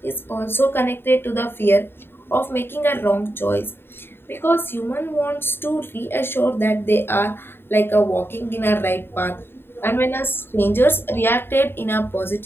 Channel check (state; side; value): late; right; 0.11 ms